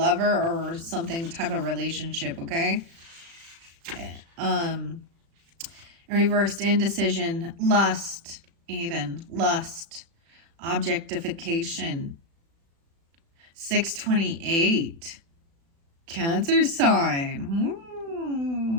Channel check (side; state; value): left; late; 36 ms